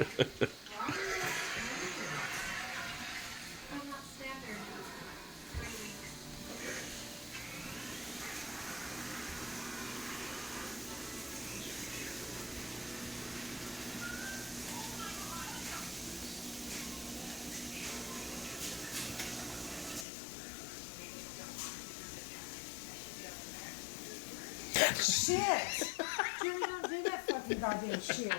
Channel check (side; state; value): right; drops out; at 20.1 s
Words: I'm not standard. 3 weeks. Shit! Jimmy, don't do that fucking goddamn shit.